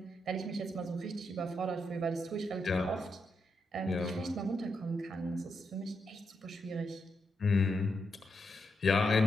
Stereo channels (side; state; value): both; normal; correlation 0.83